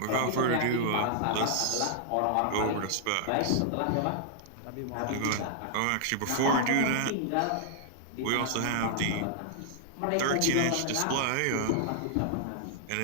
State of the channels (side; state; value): both; different; correlation -0.01